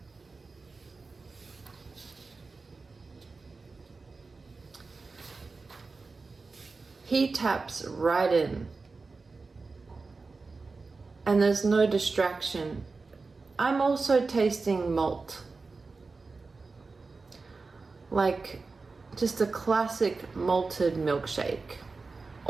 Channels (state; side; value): quieter; left; 4.1 dB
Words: He taps right in, and there's no distraction. I'm also tasting malt, like just a classic malted milkshake.